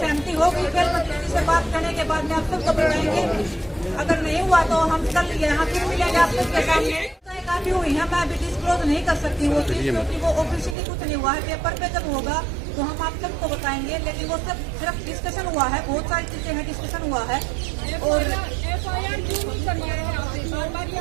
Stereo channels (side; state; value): left; drops out; at 10.8 s